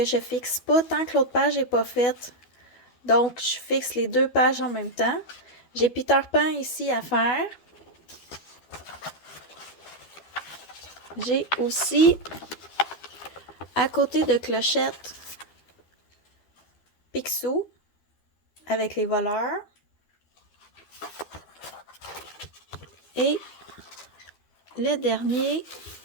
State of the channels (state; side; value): late; right; 12 ms